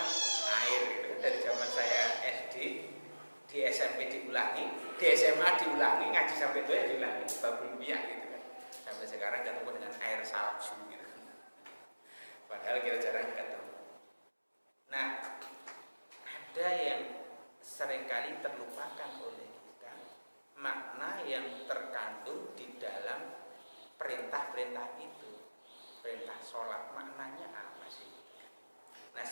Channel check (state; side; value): inverted; both; correlation -1.00